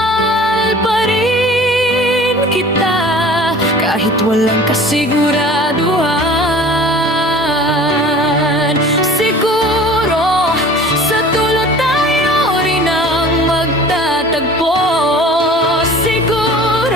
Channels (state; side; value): normal; both; correlation 0.44